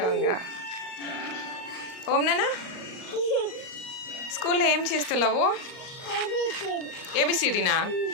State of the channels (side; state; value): right; late; 38 ms